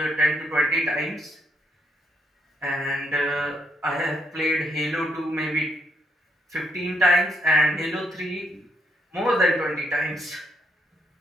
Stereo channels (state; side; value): normal; both; correlation 0.74